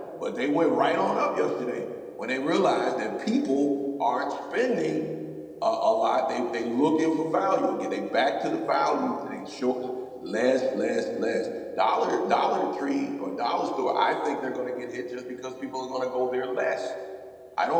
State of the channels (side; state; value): both; identical; correlation 1.00